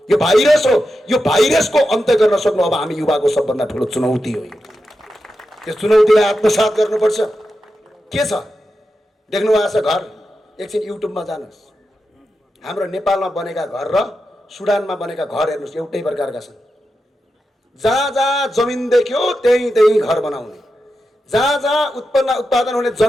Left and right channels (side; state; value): both; normal; correlation 0.89